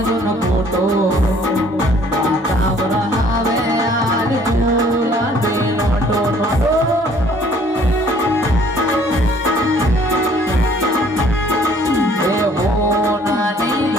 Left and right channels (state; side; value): normal; both; correlation 0.58